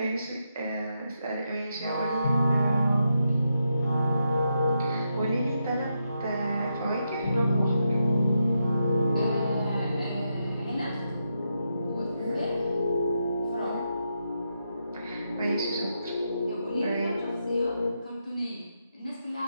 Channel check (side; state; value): both; inverted; correlation -0.83